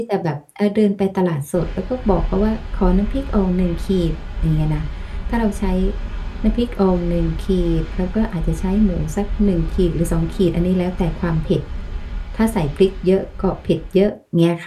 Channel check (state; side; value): identical; both; correlation 1.00